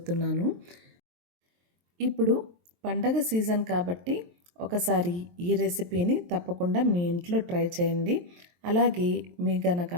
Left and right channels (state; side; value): late; left; 23 ms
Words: ఇప్పుడు పండగ సీజన్ కాబట్టి ఒకసారి ఈ రెసిపీని తప్పకుండా మీ ఇంట్లో ట్రై చేయండి. అలాగే మీ గనక